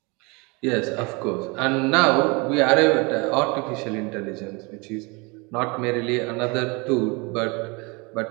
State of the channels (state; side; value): quieter; left; 28.2 dB